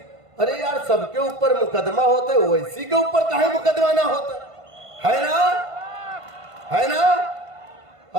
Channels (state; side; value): late; left; 1.5 ms